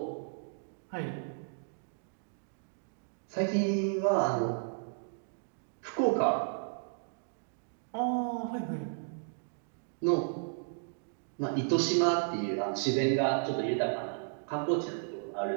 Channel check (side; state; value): left; silent; digital silence